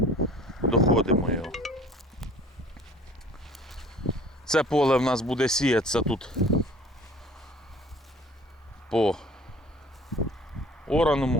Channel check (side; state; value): both; normal; correlation 0.49